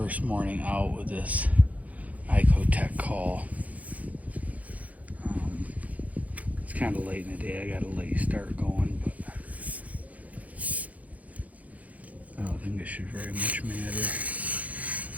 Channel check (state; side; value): late; left; 0.072 ms